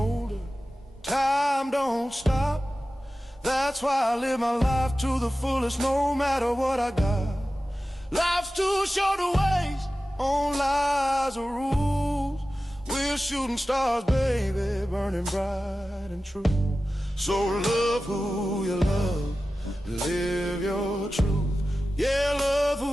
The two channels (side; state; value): both; normal; correlation 0.95